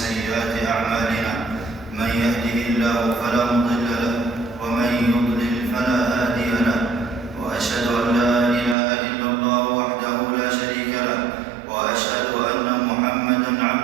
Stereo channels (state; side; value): drops out; left; at 8.8 s